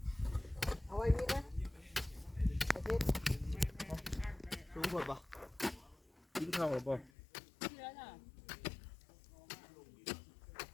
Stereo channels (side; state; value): right; drops out; at 7.1 s